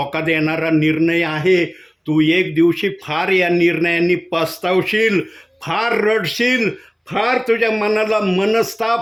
देणारा निर्णय आहे, तू एक दिवशी फार या निर्णयाने पस्तावशील, फार रडशील, फार तुझ्या मनाला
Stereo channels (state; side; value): identical; both; correlation 1.00